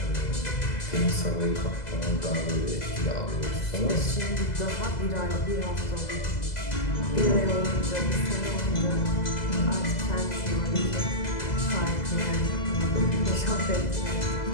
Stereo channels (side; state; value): right; late; 2.0 ms